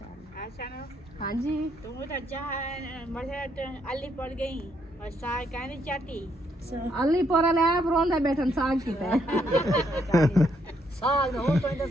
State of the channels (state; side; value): normal; both; correlation 0.74